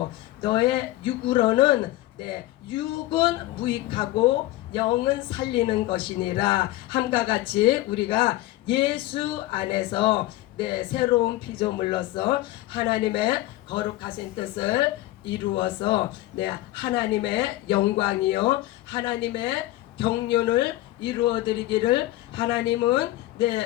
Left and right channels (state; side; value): quieter; right; 16.6 dB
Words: 너의 육으로는 육은 무익하고 영은 살리는 것이니라 함과 같이 우리가 예수 안에서 새로운 피조물로서 하나님의 거룩하신 뜻을 이루어서 하나님의 영광이요 하나님의 경륜을 이루어드리기를 하나님은